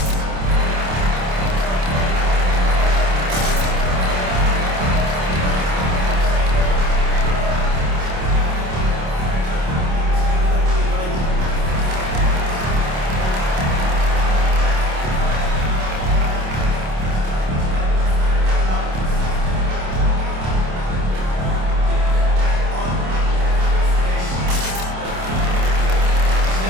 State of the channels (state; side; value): late; left; 27 ms